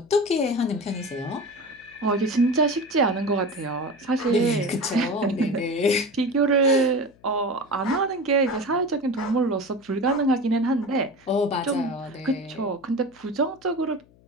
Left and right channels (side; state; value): left; noise; hum, 29 dB below the sound